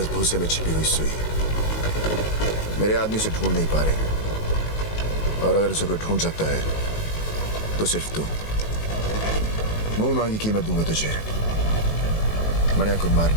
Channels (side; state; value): right; late; 19 ms